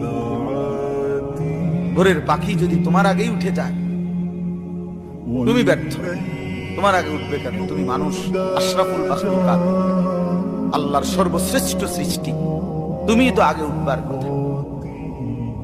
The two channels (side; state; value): both; identical; correlation 1.00